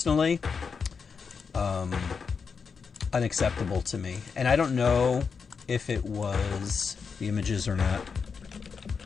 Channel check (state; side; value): quieter; right; 5.7 dB